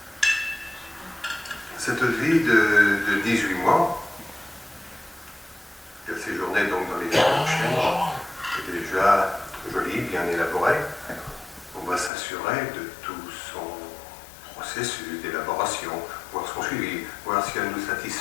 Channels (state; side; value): drops out; right; at 12.1 s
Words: Cette vie de 18 mois, qui a séjourné donc dans les chênes, est déjà jolie, bien élaborée. On va s'assurer de tout son processus d'élaboration, voir son suivi, voir si elle nous